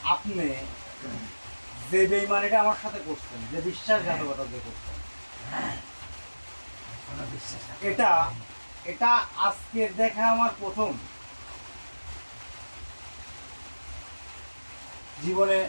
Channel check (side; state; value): both; inverted; correlation -1.00